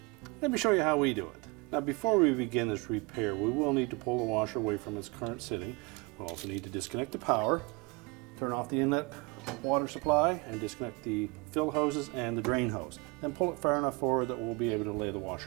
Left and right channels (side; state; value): left; quieter; 26.6 dB